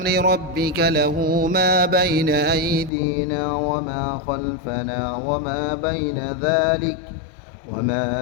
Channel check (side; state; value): right; drops out; at 2.9 s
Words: ربك له ما بين أيدينا وما خلفنا وما بين ذلك